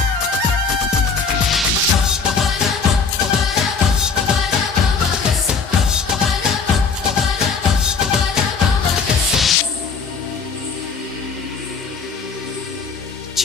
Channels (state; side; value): quieter; right; 5.2 dB